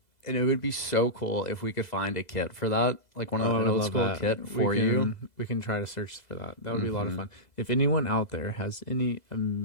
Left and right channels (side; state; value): right; late; 2.0 ms